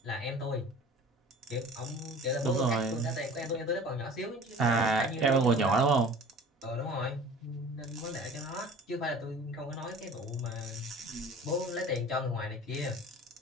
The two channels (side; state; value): both; normal; correlation 0.43